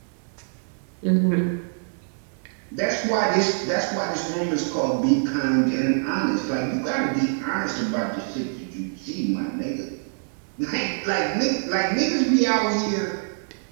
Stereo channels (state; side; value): silent; left; digital silence